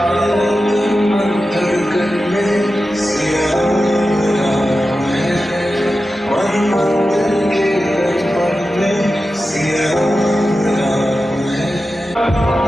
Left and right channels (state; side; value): normal; both; correlation 0.92